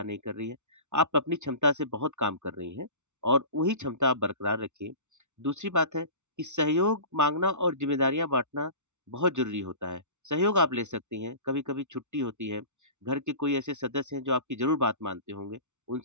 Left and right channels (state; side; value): late; left; 0.83 ms